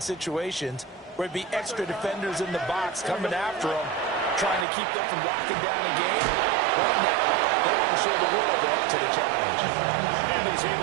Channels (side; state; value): left; drops out; at 4.7 s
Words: where it'd be extra defenders in the box coming after them, trying to keep them from locking down a game. Right now, they want to show the world they're up to the challenge. And he's